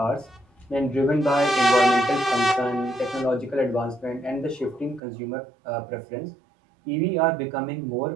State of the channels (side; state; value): left; drops out; at 5.0 s